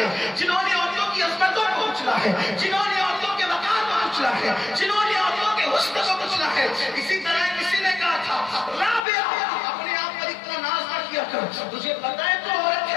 جنہوں نے عورتوں کی عظمتوں کو کچلا ہے، جنہوں نے عورتوں کے وقار کو کچلا ہے، جنہوں نے عورتوں کے حسن کو کچلا ہے۔ اسی طرح کسی نے کہا تھا، رابعہ اپنے آپ پر اتنا ناز نہ کیا کر، تجھے پتہ ہے تو عورت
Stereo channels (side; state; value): right; drops out; at 9.0 s